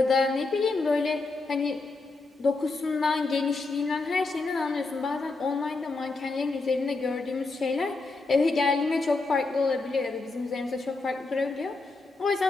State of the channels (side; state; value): right; quieter; 3.6 dB